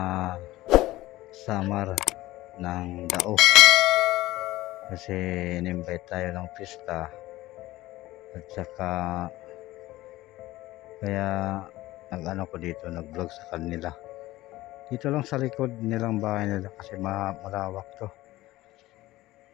Samar ng Dao kasi in-invite tayo ng pista at saka kaya nag-ano ko dito, nag-vlog sa kanila dito lang sa likod nilang bahay nila kasi malawak to.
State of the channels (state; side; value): quieter; right; 17.4 dB